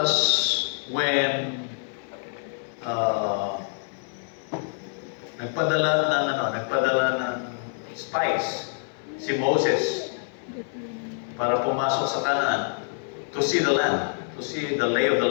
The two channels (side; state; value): right; silent; 61 dB below the other